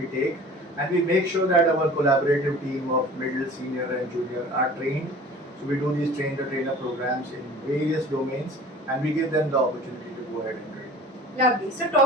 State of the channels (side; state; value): both; normal; correlation 0.43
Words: take, and we make sure that our collaborative team of middle, senior, and junior are trained. So we do these train the trainer programs in various domains, and we give them the opportunity to go ahead and train. Lovely. So